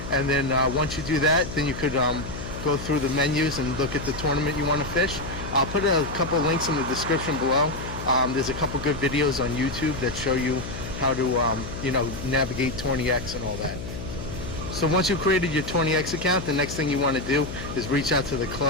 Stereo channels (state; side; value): noise; left; hum, 9 dB below the sound